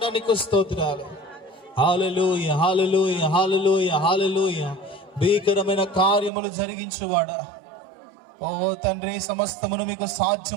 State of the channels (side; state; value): left; drops out; at 6.3 s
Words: స్తోత్రాలు. హల్లెలూయా హల్లెలూయా హల్లెలూయా హల్లెలూయా. భీకరమైన కార్యములు జరిగించువాడా, ఓ తండ్రి, సమస్తమును మీకు